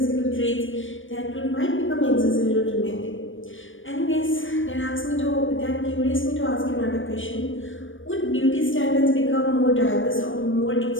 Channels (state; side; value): late; right; 0.57 ms